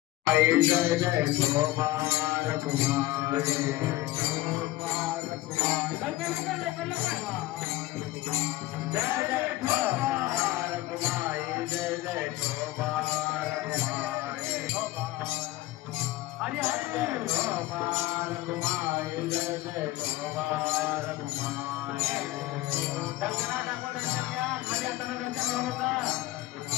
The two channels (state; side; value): quieter; right; 17.4 dB